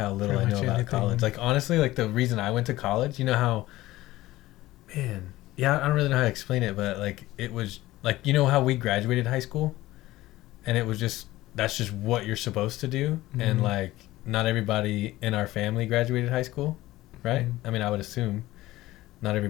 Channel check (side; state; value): right; quieter; 17.1 dB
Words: little I Pretty know much about anything. college. Like honestly, like the reason I went to college, you know how, man, yeah, I don't really know how to explain it, but like it was like you know how we graduated high school, and it was just that's just what you're supposed to do, and Mhm. like not everybody in our family graduated high school, right? Mhm. I mean, I would assume. Not